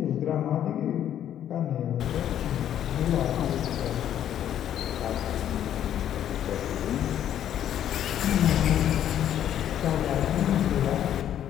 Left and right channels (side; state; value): right; quieter; 10.6 dB